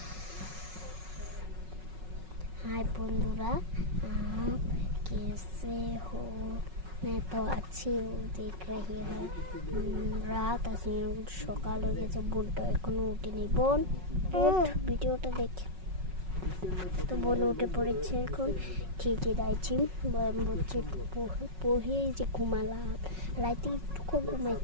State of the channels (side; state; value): left; late; 5.4 ms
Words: बंधुरा, आप कैसे हो? मैं तो अच्छी हूँ। देख रही है রাত আছে, সকাল হয়ে গেছে, বোনটা এখনো উঠেনি। বোন উঠ, ভিডিওটা দেখে। তো বোন উঠে পড়েছে, এখন খেতে যাচ্ছি। বলছে পড়ে যে ঘুমালাম, রাতে একটু